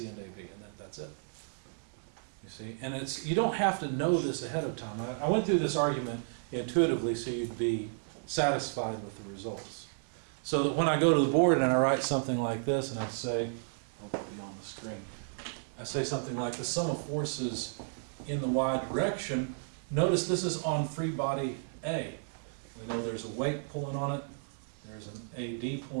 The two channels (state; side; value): silent; left; digital silence